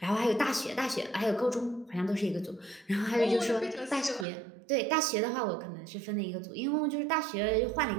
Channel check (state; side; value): drops out; left; at 4.2 s